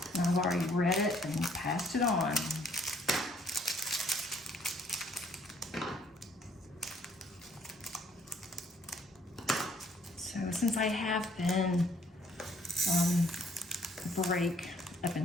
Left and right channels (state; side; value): normal; both; correlation 0.65